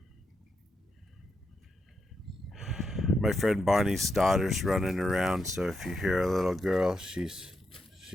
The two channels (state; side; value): normal; both; correlation 0.84